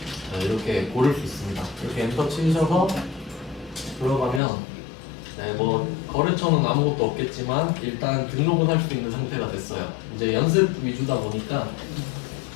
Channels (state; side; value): drops out; right; at 4.4 s